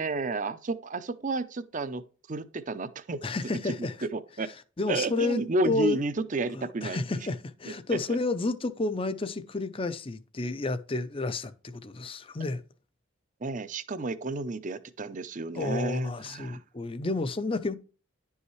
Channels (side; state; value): both; normal; correlation 0.42